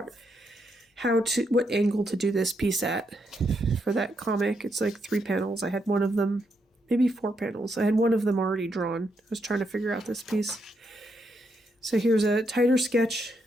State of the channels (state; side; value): normal; both; correlation 0.79